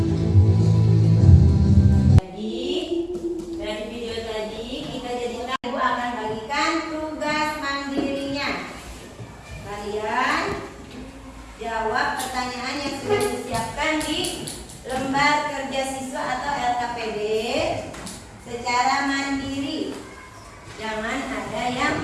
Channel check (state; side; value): identical; both; correlation 1.00